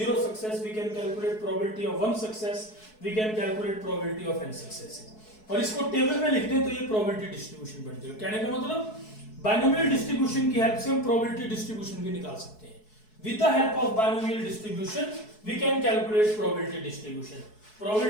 success, we can calculate probability of 1 success, we can calculate probability of n successes। और इसको table में लिख दें तो ये probability distribution बन जाएगा। कहने का मतलब बाइनोमियल डिस्ट्रीब्यूशन की हेल्प से हम प्रोबेबिलिटी डिस्ट्रीब्यूशन भी निकाल सकते हैं। With the help of binomial distribution we can calculate probability distribution.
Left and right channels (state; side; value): late; right; 4.7 ms